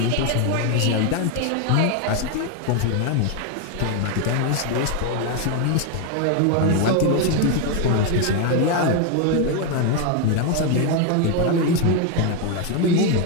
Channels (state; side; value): different; both; correlation 0.01